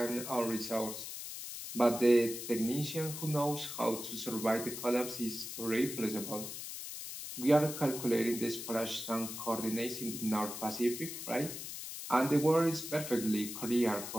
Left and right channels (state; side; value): noise; left; hiss, 8 dB below the sound